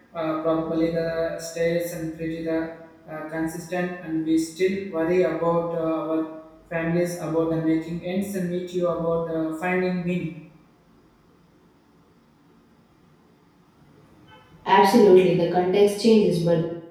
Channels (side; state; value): both; identical; correlation 1.00